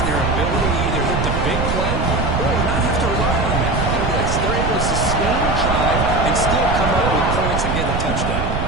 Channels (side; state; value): right; noise; rumble, 1 dB below the sound